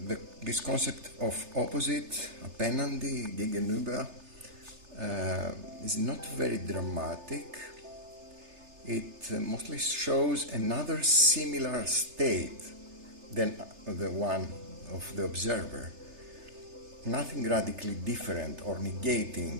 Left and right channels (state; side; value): late; left; 3.3 ms